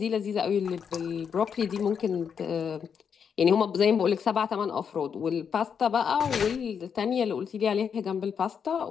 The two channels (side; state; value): right; quieter; 7.0 dB